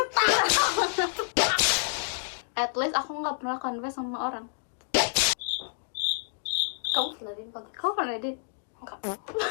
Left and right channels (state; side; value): silent; right; digital silence